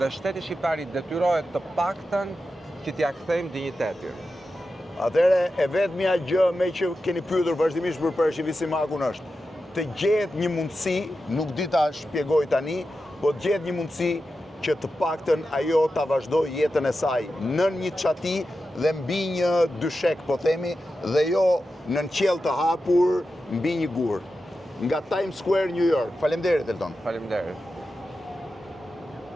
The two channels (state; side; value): normal; both; correlation 0.91